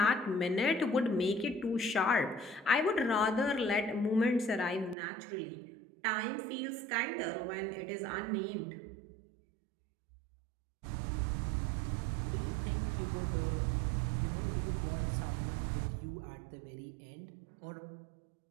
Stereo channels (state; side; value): drops out; left; at 5.0 s